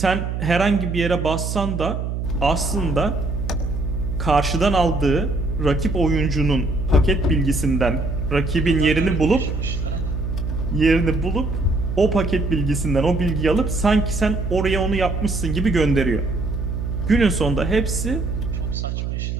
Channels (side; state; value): right; noise; hum, 3 dB below the sound